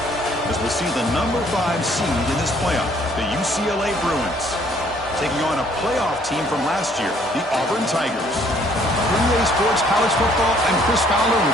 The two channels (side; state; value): both; normal; correlation 0.62